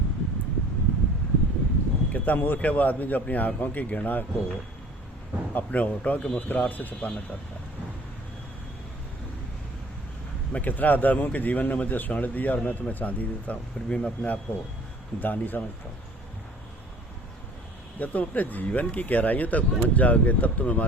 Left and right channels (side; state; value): both; normal; correlation 0.49